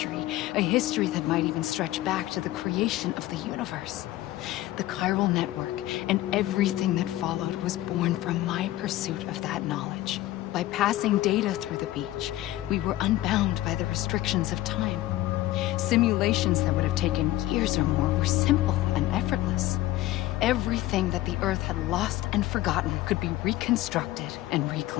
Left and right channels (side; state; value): right; quieter; 15.7 dB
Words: a history that might even stretch back to the creation of the universe. The chiral network and everything that followed was born from my pursuit of that knowledge. By passing data through the beach, we were unbound by the restrictions of time. Simulations that would have taken years or more were simple and effortless. Everything that the Earth had lost and forgotten could be reconstructed and